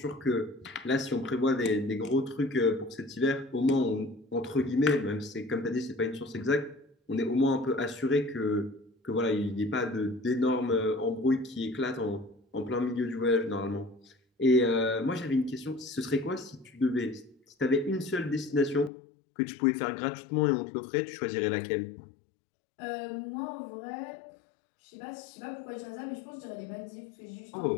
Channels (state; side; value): drops out; right; at 18.9 s